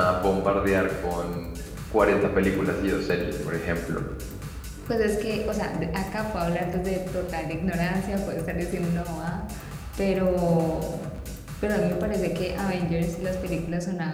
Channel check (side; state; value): both; identical; correlation 1.00